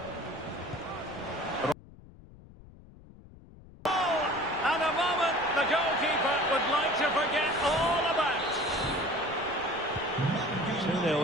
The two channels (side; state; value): left; noise; rumble, 20 dB below the sound